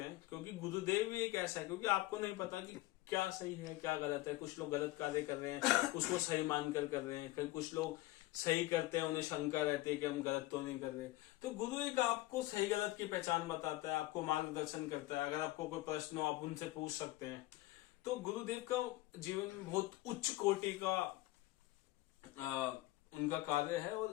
हैं, क्योंकि गुरुदेव भी एक ऐसा है, क्योंकि आपको नहीं पता कि क्या सही है क्या गलत है। कुछ लोग गलत कार्य कर रहे हैं, उसको सही मानकर कर रहे हैं, फिर कुछ लोग सही करते हैं, उन्हें शंका रहती है कि हम गलत तो नहीं कर रहे। तो गुरु एक आपको सही गलत की पहचान बताता है, आपको मार्गदर्शन करता है। अगर आपको कोई प्रश्न हो आप उनसे पूछ सकते हैं। तो गुरुदेव का जीवन में बहुत उच्च कोटि का उनका कार्य है,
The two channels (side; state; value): right; quieter; 18.1 dB